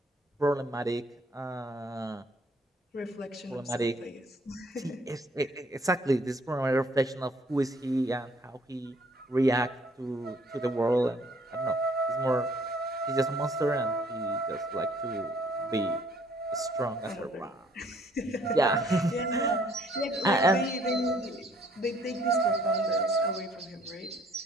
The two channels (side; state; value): both; normal; correlation 0.61